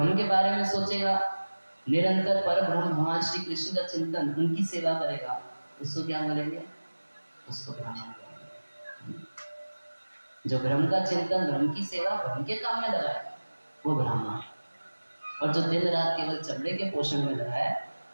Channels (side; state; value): both; inverted; correlation -1.00